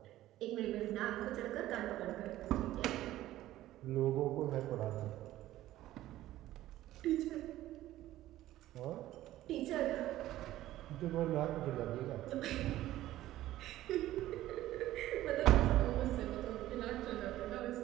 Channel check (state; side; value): quieter; left; 14.7 dB